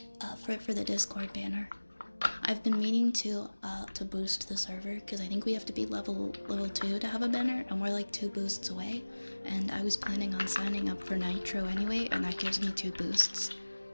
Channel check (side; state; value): both; inverted; correlation -1.00